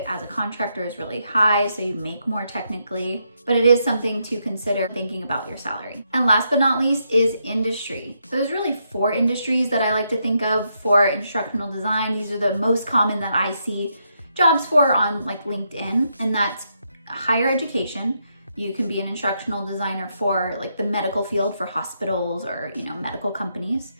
as a contractor is really high, so you make more technically, but it is something to consider thinking about your salary. And last but not least is industry. So there's really 4 industries that I like to think of for instructional design. These are the most common that I see jobs for on like LinkedIn, and that's higher education. You can be an instructional designer for like the medical field for hospitals or medical companies.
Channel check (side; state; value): both; inverted; correlation -0.79